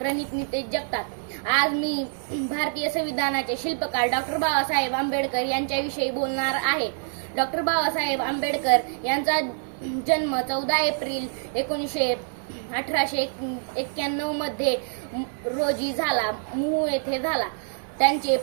नितेश जगताप. आज मी भारतीय संविधानाचे शिल्पकार डॉक्टर बाबासाहेब आंबेडकर यांच्याविषयी बोलणार आहे. डॉक्टर बाबासाहेब आंबेडकर यांचा जन्म 14 एप्रिल 1891 मध्ये रोजी झाला, मूळ येथे झाला. त्यांचे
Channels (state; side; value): silent; left; 61 dB below the other